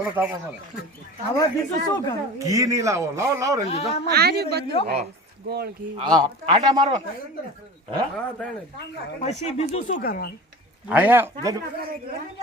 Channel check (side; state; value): both; normal; correlation 0.36